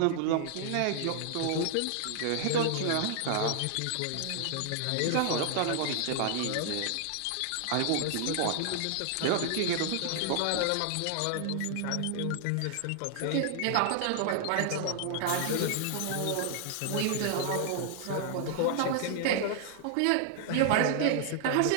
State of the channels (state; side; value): different; both; correlation 0.00